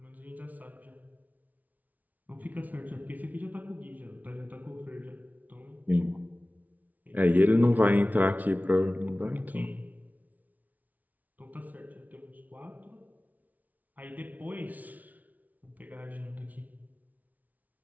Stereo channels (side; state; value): left; late; 0.075 ms